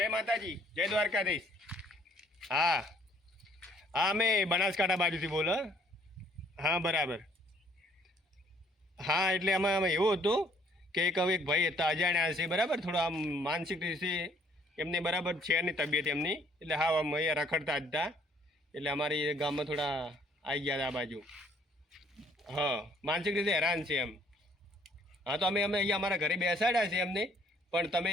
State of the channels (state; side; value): normal; both; correlation 0.62